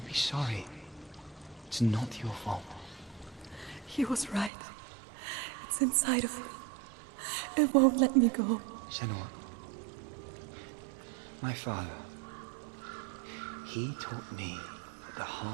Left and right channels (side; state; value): left; drops out; at 4.5 s